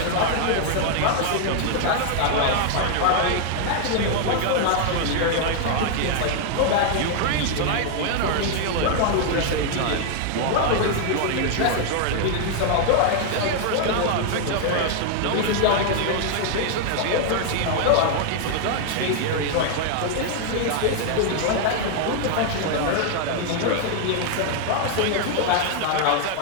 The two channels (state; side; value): different; both; correlation 0.00